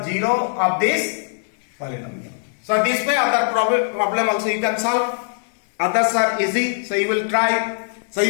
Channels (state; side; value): silent; right; 65 dB below the other